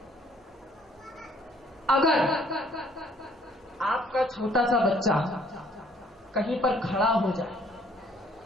اگر آپ کا چھوٹا سا بچہ کہیں پر کھڑا ہو جائے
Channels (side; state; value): both; normal; correlation 0.61